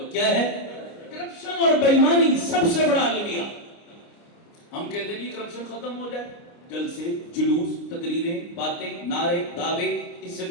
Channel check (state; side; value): late; right; 29 ms